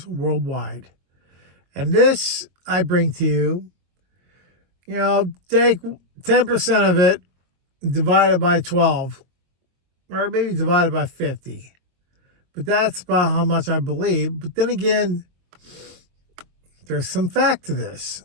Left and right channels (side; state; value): left; late; 22 ms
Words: Worldwide. And this I bring to you, take 10% of it, divided by 12, or maybe divided by 50. But that's about how much I believe. But then again, there's some fact to this.